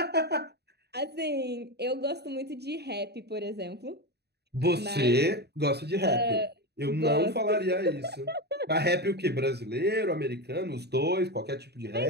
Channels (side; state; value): left; late; 0.48 ms